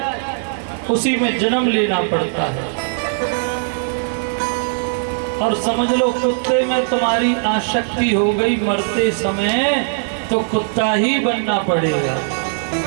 उसी में जन्म लेना पड़ता है। और समझ लो कुत्ते में तुम्हारी आसक्ति हो गई मरते समय, तो कुत्ता ही बनना पड़ेगा।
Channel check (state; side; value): silent; left; digital silence